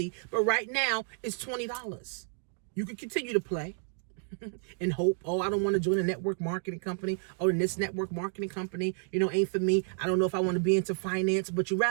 but right now it's $20. You can continue to play and hope, oh, I don't want to join a network marketing company. Oh, and this network marketing company, ain't for me. I don't know if I want to be into finance, but you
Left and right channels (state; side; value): silent; left; 57 dB below the other